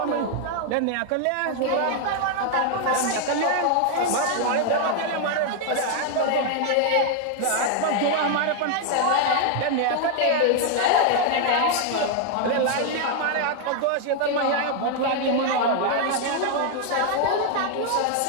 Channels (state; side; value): different; both; correlation 0.00